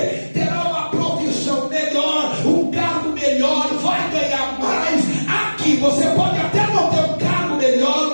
Terá uma profissão melhor, um cargo melhor, vai ganhar mais. Aqui você pode até não ter um cargo melhor,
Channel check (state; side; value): inverted; both; correlation -1.00